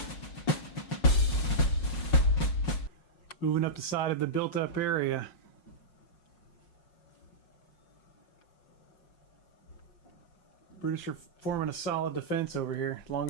Moving up the side of the built-up area. British are forming a solid defense over here, as long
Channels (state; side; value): late; right; 5.5 ms